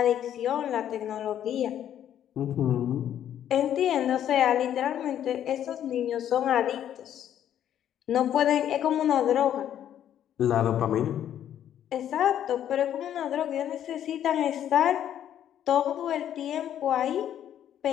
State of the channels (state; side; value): quieter; right; 10.5 dB